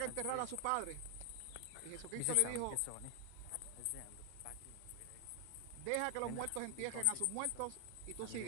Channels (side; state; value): both; different; correlation 0.00